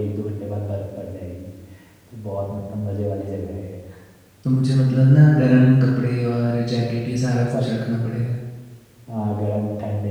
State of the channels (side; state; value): both; identical; correlation 1.00